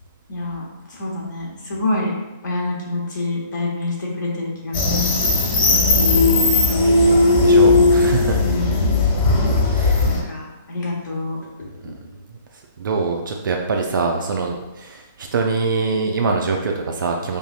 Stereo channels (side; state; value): both; inverted; correlation -0.51